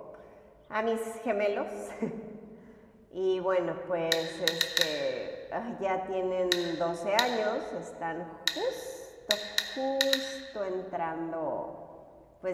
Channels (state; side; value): identical; both; correlation 1.00